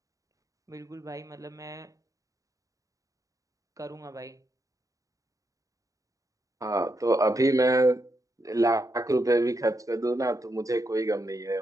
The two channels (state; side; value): late; left; 0.16 ms